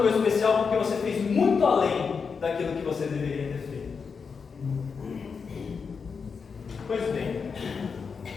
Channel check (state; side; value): quieter; right; 5.6 dB